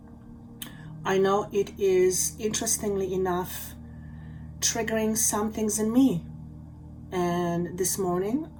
I know it is, interestingly enough, triggering some things in me. And this morning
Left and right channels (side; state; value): both; identical; correlation 1.00